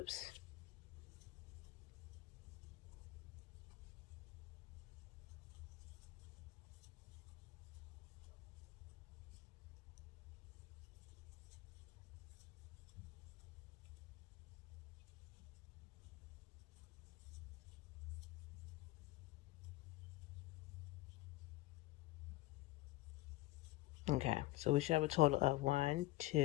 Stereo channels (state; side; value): quieter; right; 17.7 dB